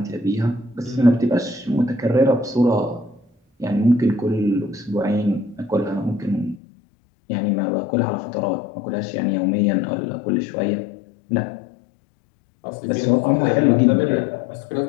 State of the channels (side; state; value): right; drops out; at 6.6 s